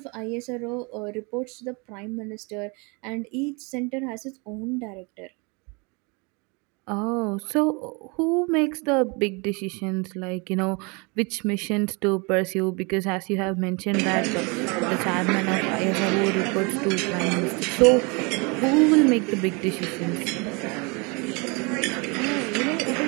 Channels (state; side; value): quieter; left; 30.1 dB